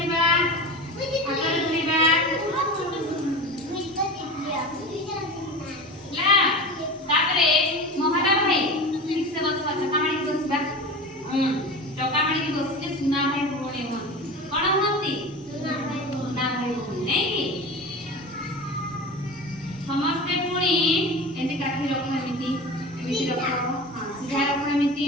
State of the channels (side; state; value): both; normal; correlation 0.31